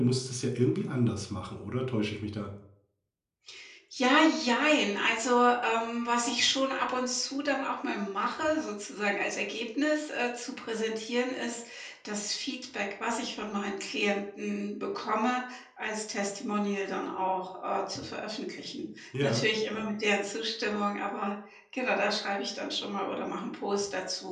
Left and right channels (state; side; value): identical; both; correlation 1.00